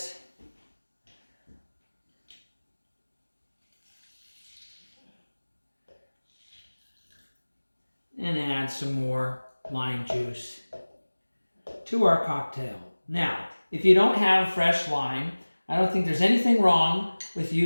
And add some more lime juice to our cocktail. Now, if you don't have fresh lime, I don't think there's anything wrong with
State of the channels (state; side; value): inverted; both; correlation -1.00